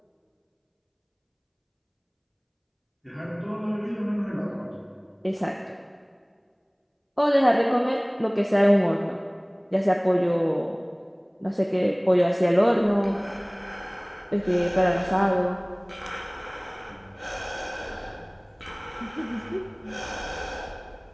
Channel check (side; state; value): both; identical; correlation 1.00